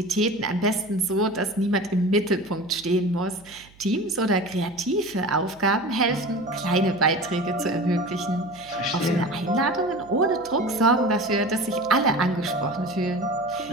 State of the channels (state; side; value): noise; right; hum, 26 dB below the sound